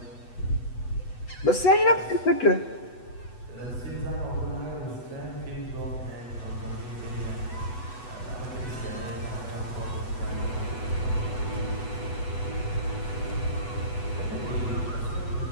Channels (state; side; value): late; right; 8.1 ms